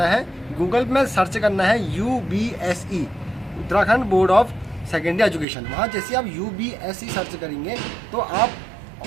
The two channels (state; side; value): drops out; left; at 5.5 s